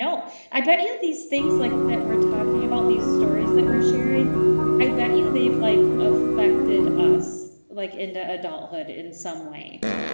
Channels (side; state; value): both; inverted; correlation -1.00